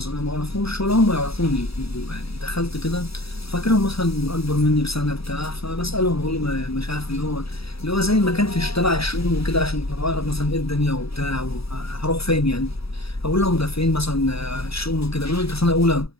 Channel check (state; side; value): late; right; 0.77 ms